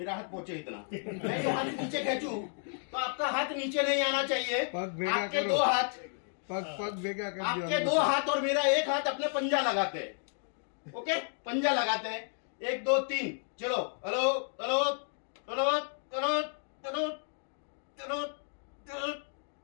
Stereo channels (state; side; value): silent; right; 56 dB below the other